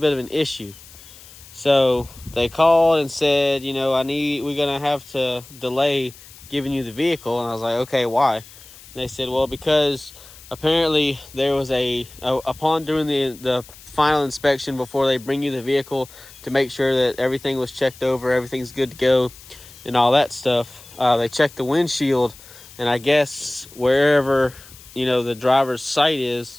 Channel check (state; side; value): noise; left; hiss, 20 dB below the sound